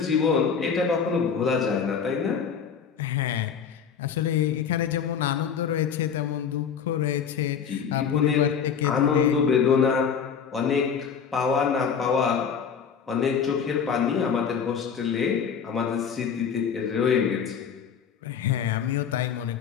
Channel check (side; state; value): right; quieter; 7.0 dB